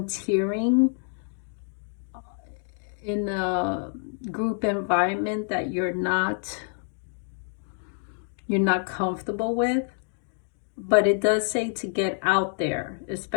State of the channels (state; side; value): silent; right; 60 dB below the other